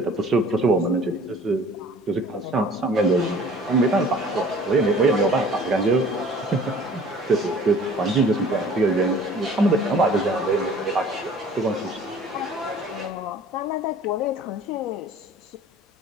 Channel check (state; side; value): normal; both; correlation 0.49